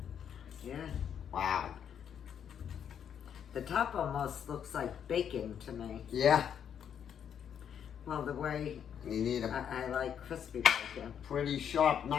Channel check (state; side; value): quieter; right; 8.5 dB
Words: yeah. Wow. The top almost looks like bacon to me. Yeah. Well, the way You need a I like crispy bacon. pretty sharp